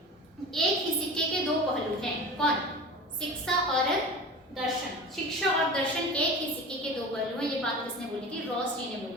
एक ही सिक्के के दो पहलू हैं। कौन? शिक्षा और दर्शन। शिक्षा और दर्शन एक ही सिक्के के दो पहलू हैं। ये बात किसने बोली थी? रॉस जी ने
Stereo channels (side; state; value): both; normal; correlation 0.34